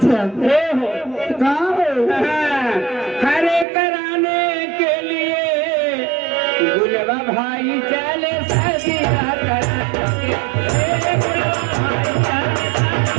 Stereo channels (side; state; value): left; drops out; at 3.7 s